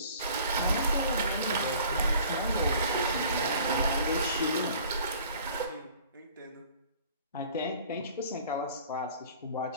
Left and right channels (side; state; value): both; inverted; correlation -0.50